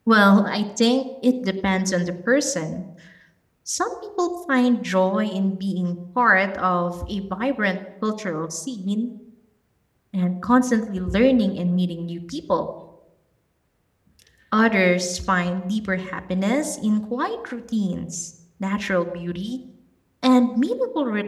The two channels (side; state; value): both; identical; correlation 1.00